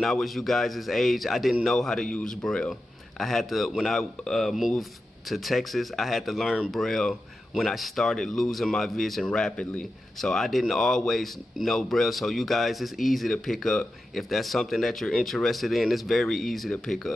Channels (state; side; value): normal; both; correlation 0.91